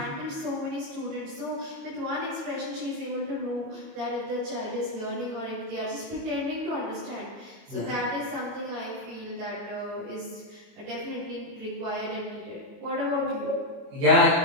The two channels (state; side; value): late; left; 29 ms